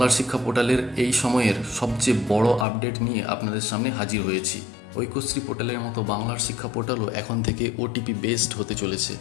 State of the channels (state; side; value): drops out; right; at 2.7 s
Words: শিক্ষা পোর্টালের এই সময়ের সবচেয়ে বড় আপডেট নিয়ে আপনাদের সামনে হাজির হয়েছি। ঐক্যশ্রী পোর্টালের মতো বাংলার শিক্ষা পোর্টালও এখন থেকে ওটিপি বেসড হতে চলেছে।